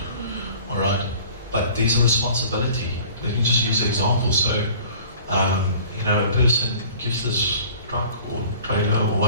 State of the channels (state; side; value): inverted; both; correlation -0.47